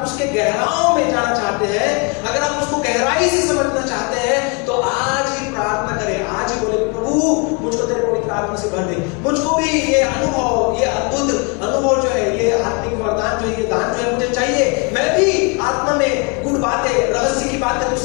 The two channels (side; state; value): right; quieter; 32.4 dB